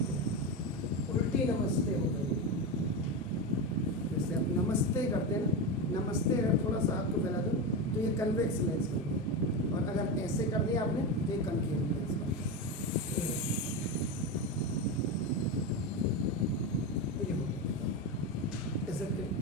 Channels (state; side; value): normal; both; correlation 0.16